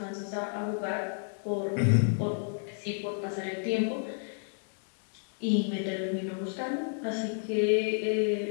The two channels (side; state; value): right; silent; digital silence